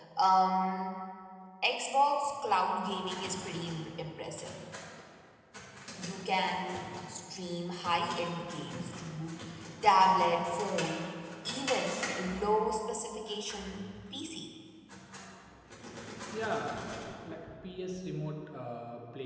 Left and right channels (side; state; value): both; identical; correlation 1.00